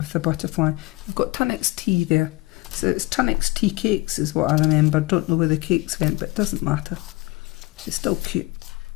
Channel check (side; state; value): right; quieter; 22.7 dB